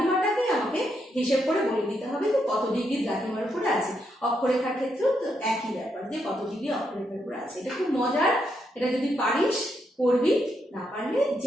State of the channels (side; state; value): both; normal; correlation 0.79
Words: আমাকে হিসেব করে বলে দিতে হবে যে কত ডিগ্রি দ্রাঘিমার উপরে আছে। অক্ষরেখার ক্ষেত্রেও তো একই ব্যাপার, যে কত ডিগ্রি অক্ষরেখার উপরে আছে। এটা খুব মজার, এটা যদি পারিস করবি, না পারলে